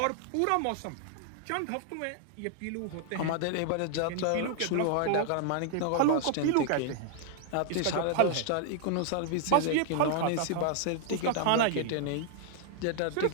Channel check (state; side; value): different; both; correlation 0.00